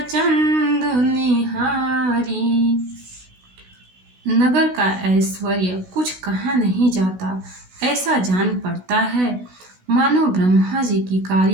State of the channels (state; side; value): late; left; 16 ms